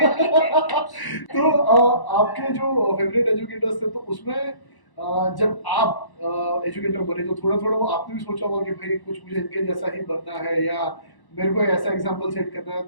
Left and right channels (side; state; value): right; late; 1.1 ms